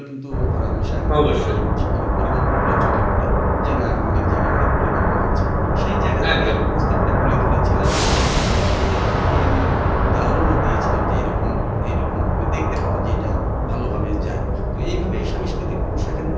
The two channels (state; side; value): identical; both; correlation 1.00